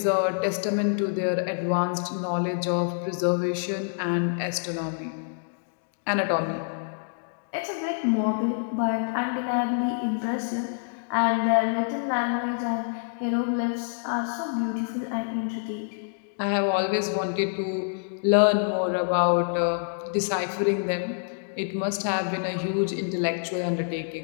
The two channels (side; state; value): right; silent; digital silence